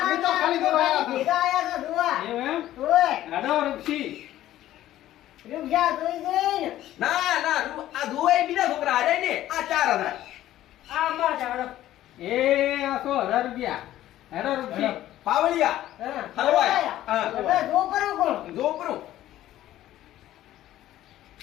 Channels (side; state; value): right; quieter; 13.6 dB